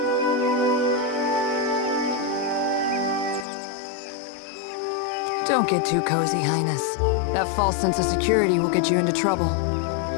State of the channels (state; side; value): drops out; right; at 3.5 s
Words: Don't get too cozy, Highness. That false sense of security will get you into trouble.